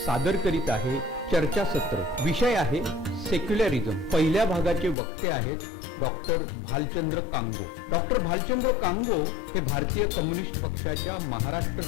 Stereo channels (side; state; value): right; drops out; at 5.0 s